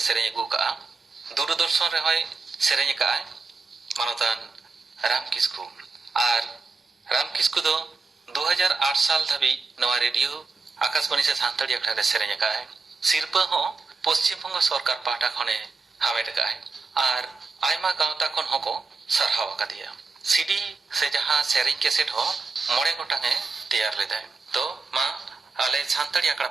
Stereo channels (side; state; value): left; quieter; 4.2 dB